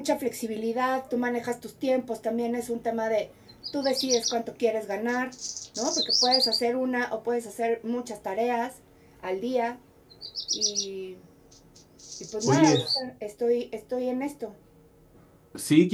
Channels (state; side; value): identical; both; correlation 1.00